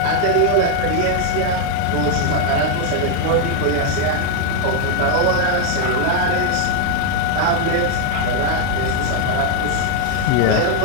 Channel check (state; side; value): different; both; correlation 0.00